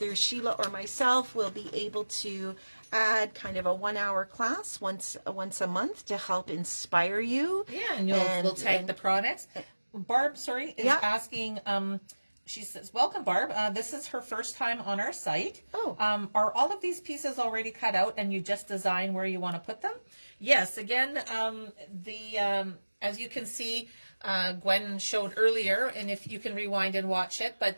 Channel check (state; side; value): inverted; both; correlation -1.00